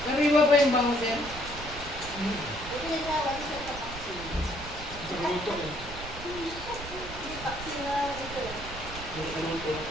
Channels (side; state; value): right; noise; rumble, 12 dB below the sound